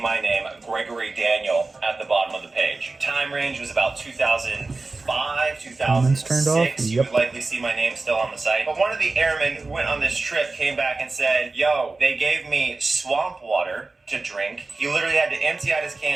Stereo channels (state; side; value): quieter; left; 3.6 dB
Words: name, Gregory Daniel, at the bottom of the page. Time range was about 2005, 2006. You would likely see my name still on the site. But one of the airmen who went on this trip came back and said, yo, they gave me swamp water to drink. He literally had to empty out his